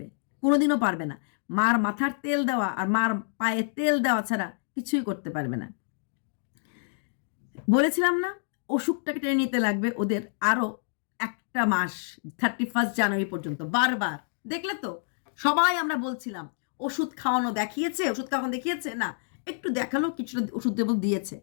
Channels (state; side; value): silent; right; digital silence